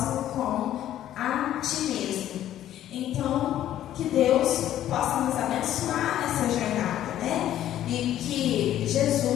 como a ti mesmo. Então, que Deus possa nos abençoar nessa jornada, né? E que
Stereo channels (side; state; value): right; quieter; 12.1 dB